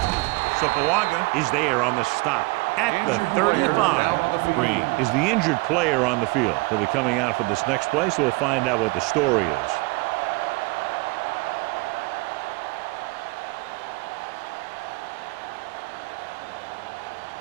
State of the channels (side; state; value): left; quieter; 25.5 dB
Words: So Pawaga is there on the stop at the 35. Green is the injured player on the field. He'll be coming out for this next play, so we'll find out what the story is.